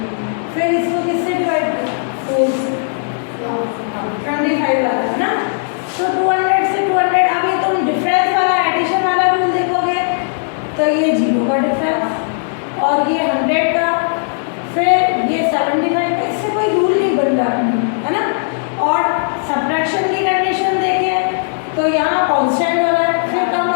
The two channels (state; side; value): silent; right; digital silence